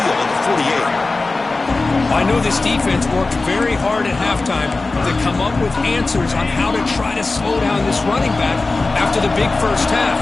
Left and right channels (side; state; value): right; quieter; 3.5 dB